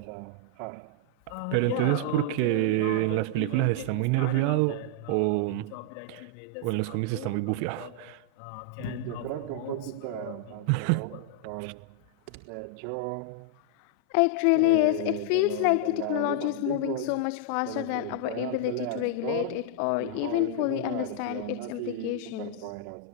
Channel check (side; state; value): both; different; correlation -0.01